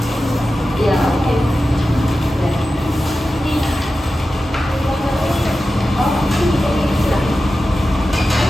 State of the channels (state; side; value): normal; both; correlation 0.93